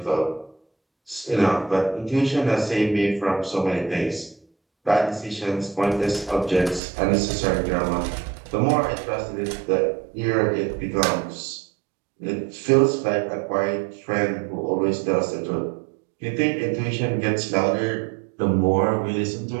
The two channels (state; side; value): drops out; left; at 6.8 s